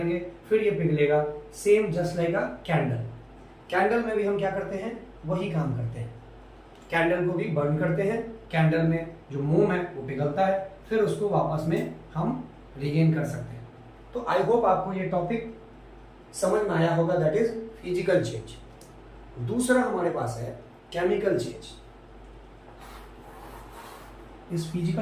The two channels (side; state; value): both; identical; correlation 1.00